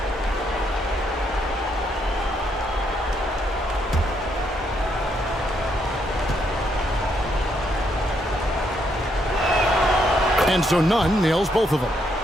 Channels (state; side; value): normal; both; correlation 0.75